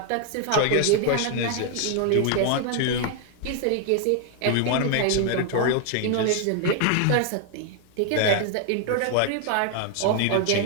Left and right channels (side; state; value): both; different; correlation 0.00